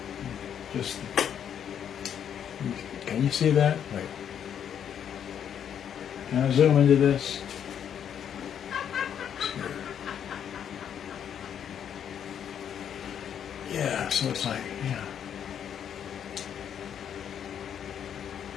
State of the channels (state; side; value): quieter; right; 8.9 dB